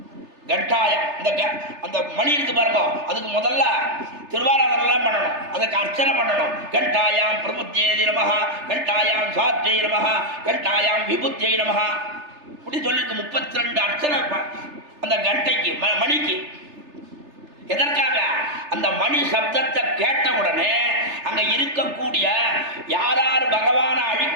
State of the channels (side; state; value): left; late; 3.3 ms